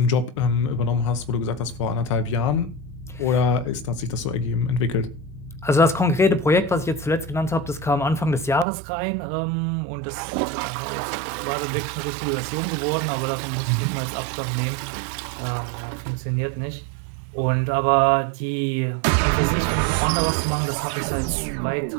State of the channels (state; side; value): drops out; left; at 8.7 s